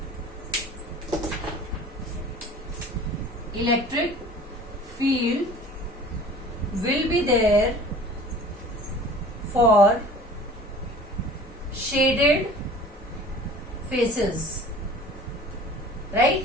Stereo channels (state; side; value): normal; both; correlation 0.44